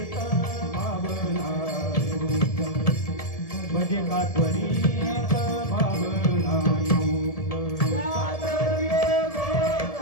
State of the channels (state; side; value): late; right; 1.7 ms